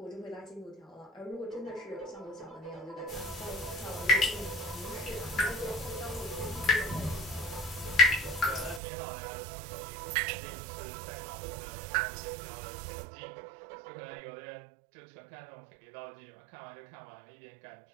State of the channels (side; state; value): left; drops out; at 8.8 s